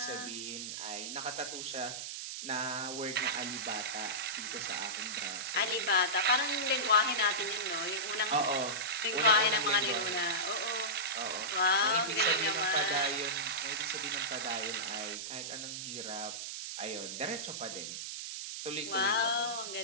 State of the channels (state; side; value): noise; right; hiss, 6 dB below the sound